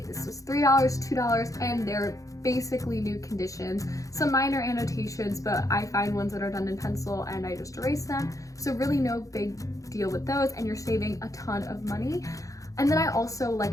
this was $3, $2, and they're basically new conditions. Some minor annotations, but I find ones that are done in pencil and I just erase them. So really no big deal with those, and you're saving a ton of money. And then I also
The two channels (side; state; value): right; late; 0.16 ms